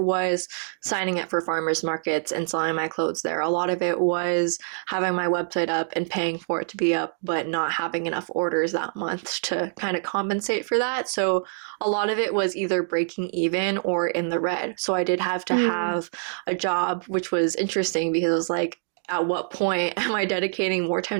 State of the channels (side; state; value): left; silent; digital silence